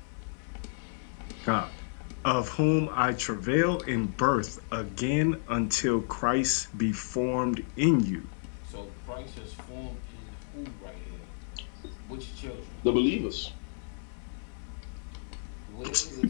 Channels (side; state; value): right; silent; digital silence